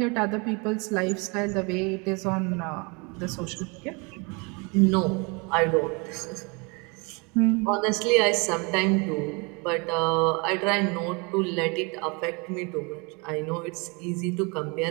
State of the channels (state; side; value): quieter; left; 30.5 dB